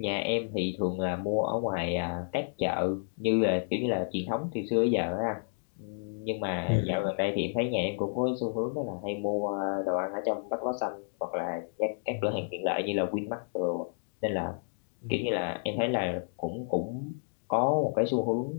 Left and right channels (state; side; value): silent; right; digital silence